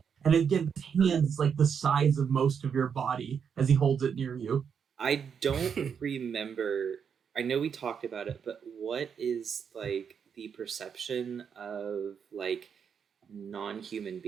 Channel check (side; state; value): left; quieter; 7.1 dB